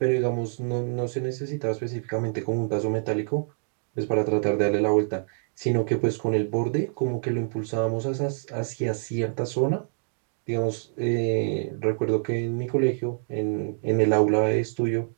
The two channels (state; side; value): silent; left; digital silence